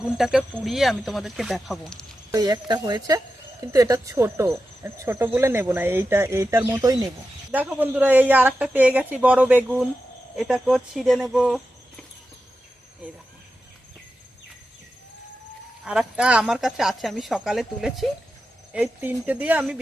পুড়িয়ে আমি তোমাদেরকে দেখাবো। এই একটা হয়েছে, কিন্তু এটা ছোট ছোট বলে নেব না, এইটার মতোই নেব। দেখো বন্ধুরা, এই আর একটা পেয়ে গেছি বড় বেগুন। এটাকেও ছিঁড়ে নেব। এই দেখো, আর একটা আমার কাছে আছে, আমি সকালে তুলেছি। এই তিনটে দিয়ে আমি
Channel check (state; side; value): normal; both; correlation 0.91